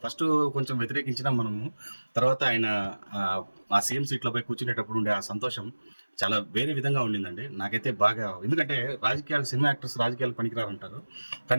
ఫస్ట్ కొంచెం వ్యతిరేకించినా మనము, తర్వాత ఆయన ఆ సీఎం సీట్లోపై కూర్చునేటప్పుడు ఉండే ఆ సంతోషం చాలా వేరే విధంగా ఉండిందండి. నాకైతే బాగా, ఎందుకంటే రాజకీయాలు, సినిమా యాక్టర్స్ రాజకీయాలు పనికిరారంటారు,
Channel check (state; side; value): inverted; both; correlation -1.00